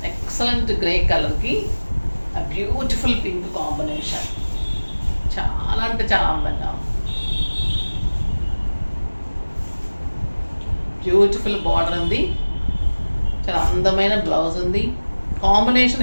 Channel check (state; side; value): inverted; both; correlation -1.00